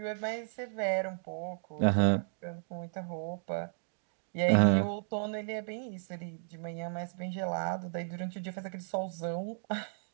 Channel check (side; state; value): left; silent; digital silence